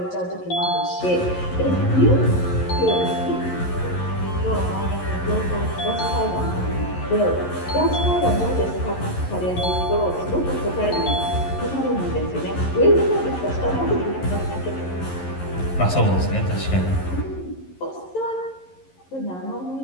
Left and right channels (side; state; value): right; late; 11 ms